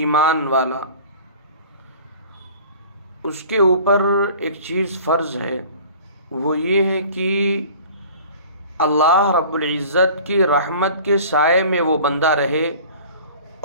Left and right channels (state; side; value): inverted; both; correlation -0.45